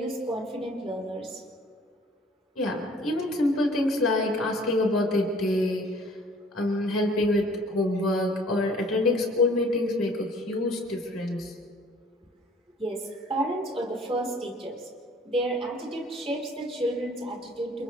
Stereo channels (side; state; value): both; normal; correlation 0.54